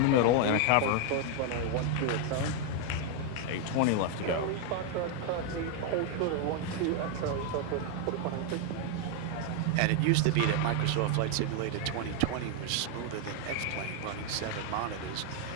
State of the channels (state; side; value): different; both; correlation 0.01